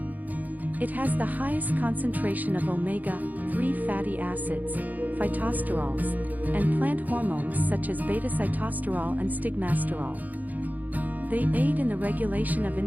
It has the highest concentration of omega-3 fatty acids, phytosterols, and plant hormones such as beta-sitosterol and stigmasterol. They aid in the regulation of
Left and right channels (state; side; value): late; left; 0.081 ms